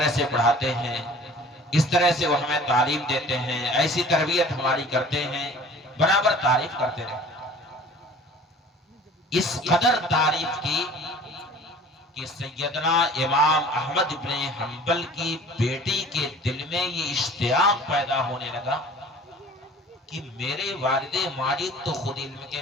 سے پڑھاتے ہیں، اس طرح سے وہ ہمیں تعلیم دیتے ہیں، ایسی تربیت ہماری کرتے ہیں، برابر تعریف کرتے رہے۔ اس قدر تعریف کی کہ سیدنا امام احمد ابن حنبل کی بیٹی کے دل میں یہ اشتیاق پیدا ہونے لگا کہ میرے والد ماجد تو خود علم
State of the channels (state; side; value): normal; both; correlation 0.47